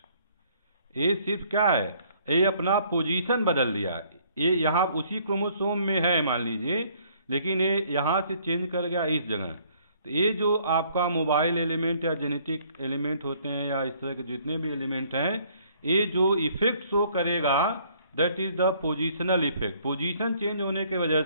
ये सिर्फ क्या है, ये अपना पोजीशन बदल दिया। ये यहाँ उसी क्रोमोसोम में है मान लीजिए, लेकिन ये यहाँ से चेंज कर गया इस जगह। तो ये जो आपका मोबाइल एलिमेंट या जेनेटिक एलिमेंट होते हैं या इस तरह के जितने भी एलिमेंट हैं, ये जो इफेक्ट शो करेगा that is the positional effect. Position change होने की वजह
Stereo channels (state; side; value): inverted; both; correlation -0.62